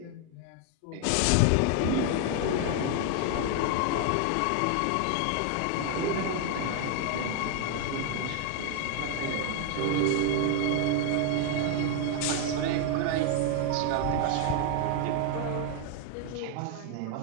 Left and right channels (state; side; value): different; both; correlation 0.00